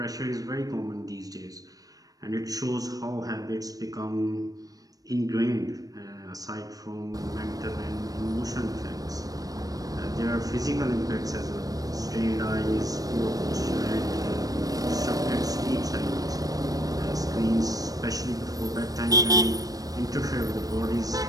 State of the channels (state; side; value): late; left; 0.18 ms